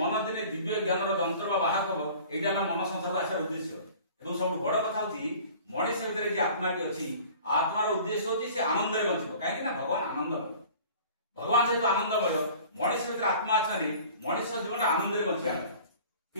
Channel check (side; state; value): both; inverted; correlation -0.46